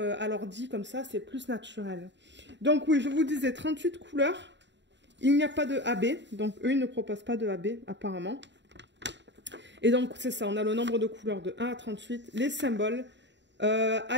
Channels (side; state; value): left; late; 0.52 ms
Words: l'ordi, comme ça, c'est plus naturel. Donc oui, je vous disais 38 couleurs. Il n'y a pas de AB. Donc eux, ils ne proposent pas de AB, apparemment. Et donc, c'est ça, on a le nombre de couleurs de 1 à 38. Les symboles.